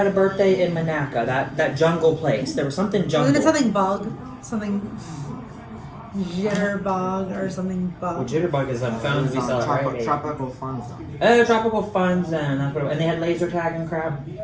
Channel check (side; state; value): both; identical; correlation 1.00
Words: a birthday in Monaco? That jungle place. There was something jungle. Wasn't it something bug? Something jitterbug or something bug. Well, jitterbug is on phones we sell at Tropical Fun Zone. Oh, Tropical Fun Zone. That's what and they had laser tag and crap.